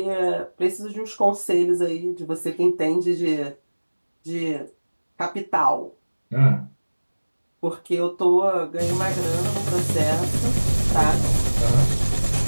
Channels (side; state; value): both; inverted; correlation -1.00